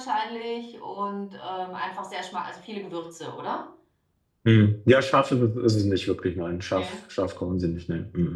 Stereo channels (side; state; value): both; identical; correlation 1.00